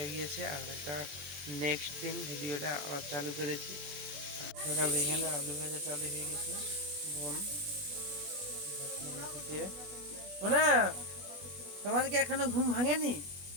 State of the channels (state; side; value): late; left; 21 ms